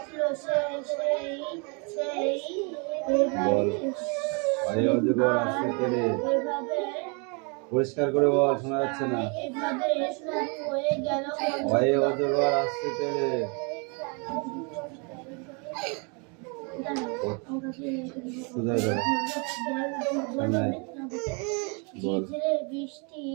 পরিষ্কার করে বল, শোনা যাচ্ছে না। ভয়ে অজগর আসছে তেলে। বৃষ্টি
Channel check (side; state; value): left; quieter; 34.1 dB